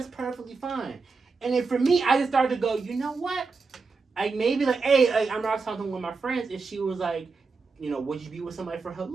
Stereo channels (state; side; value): quieter; left; 4.4 dB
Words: perfectly fine. And then for me, I just started to go, you know what? Hey, I'm not talking with my friends, and she was like, would you be with somebody for her